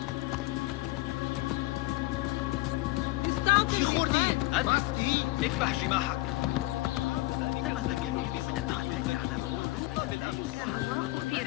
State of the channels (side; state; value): right; quieter; 20.6 dB